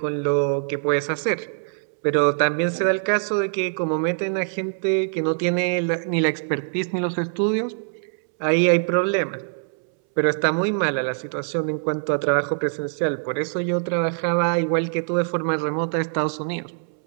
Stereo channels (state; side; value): silent; left; 63 dB below the other